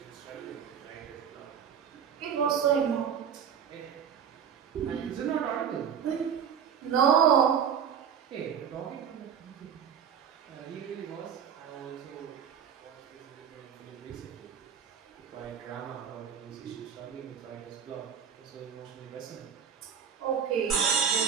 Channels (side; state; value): left; quieter; 7.8 dB